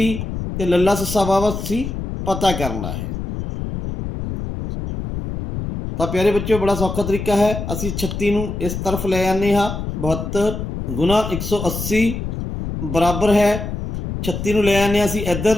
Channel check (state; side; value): noise; left; rumble, 5 dB below the sound